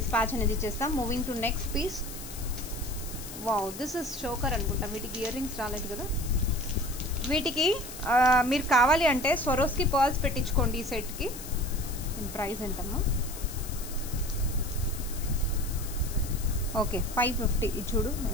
అనేది ఇచ్చేస్తాం. Moving to next piece. Wow, this is choker అనుకుంటా. వీటికి ఇయర్ రింగ్స్ రాలేదు కదా. వీటికి మీరు కావాలి అంటే స్వరోస్కి పర్ల్స్ పెట్టించుకోండి ఈ సెట్కి. ప్రైస్ ఎంతమ్మా? ఓకే, 550. ఇది చూడు,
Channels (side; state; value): left; noise; hiss, 12 dB below the sound